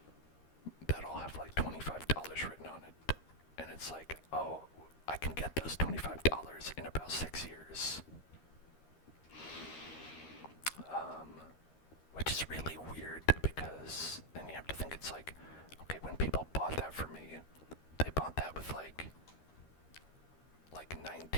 that all have like $25 written on it. And it's like, oh, I can get those $25 in about 6 years. Which is really weird, because then you have to think, it's like, okay, when people bought that for me, they bought that with like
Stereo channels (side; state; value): right; late; 13 ms